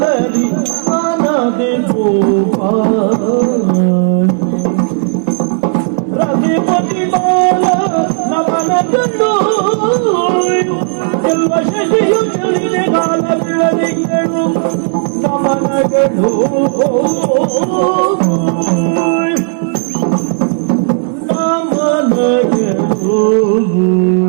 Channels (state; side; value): silent; left; 60 dB below the other